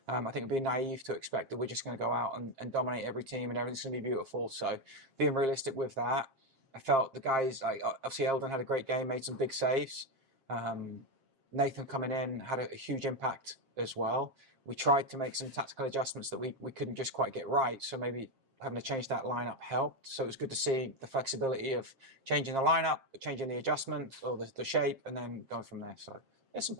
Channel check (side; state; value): left; late; 7.5 ms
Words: I think it'd be naive to expect that we're just going to go out and dominate every team and everything's going to be beautiful. So being realistic with that, I felt the guys, like obviously Eldon had a great game, made some big saves. Um, Nathan coming in had a huge impact as well. We tried to make some tactical adjustments that we couldn't just quite get right. So maybe having to change that lineup helped. So it was good to see the flexibility of changing the lineup, changing the adjustment or the shape, and then going from there. So there's some